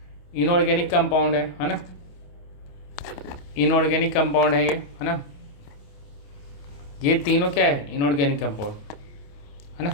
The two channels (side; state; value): right; late; 28 ms